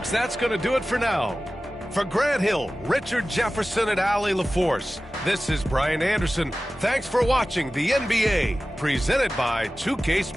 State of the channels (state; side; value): normal; both; correlation 0.96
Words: that's going to do it for now. For Grant Hill, Richard Jefferson, and Allie LaForce, this is Brian Anderson. Thanks for watching the NBA, presented by 2K